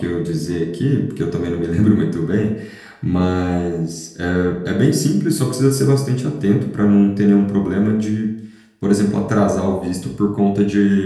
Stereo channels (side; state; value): both; identical; correlation 1.00